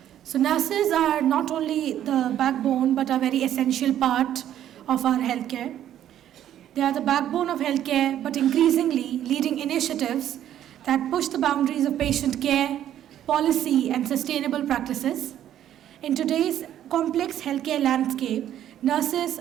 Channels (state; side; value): quieter; left; 11.2 dB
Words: So nurses are not only the backbone but a very essential part of our healthcare. They are the backbone of healthcare but increasingly leading initiatives that push the boundaries of patient care, policy and sustainable practices. In today's complex healthcare landscape, nurses